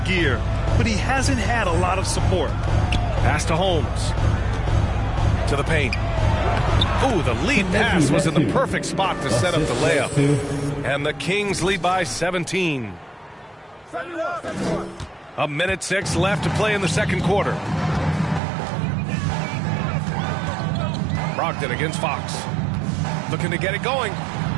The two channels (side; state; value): left; drops out; at 18.4 s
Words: gear, but he hasn't had a lot of support. Pass to Holmes. To the paint. Ooh, the lead pass was in the perfect spot to set up the layup. And the Kings lead by 17. A minute 6 left to play in the second quarter. Brogdon against Fox. Looking to get it going.